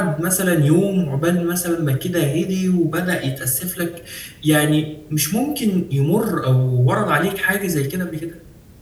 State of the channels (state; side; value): identical; both; correlation 1.00